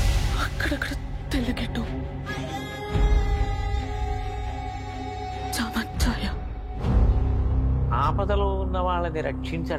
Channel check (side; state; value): both; identical; correlation 1.00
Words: అక్కడక్కడ తెల్లగెట్టు చామచ్చాయ. ఆపదలో ఉన్న వాళ్ళని